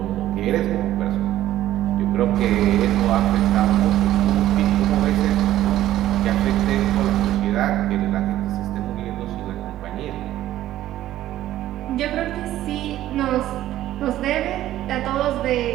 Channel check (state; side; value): quieter; left; 13.5 dB